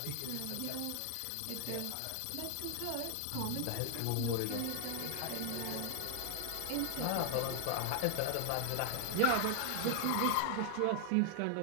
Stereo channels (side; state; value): both; different; correlation 0.00